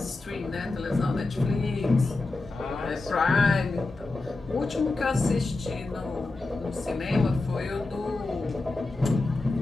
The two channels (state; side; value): quieter; right; 3.3 dB